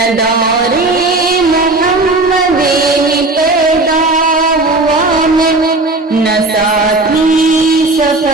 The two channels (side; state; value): left; quieter; 3.0 dB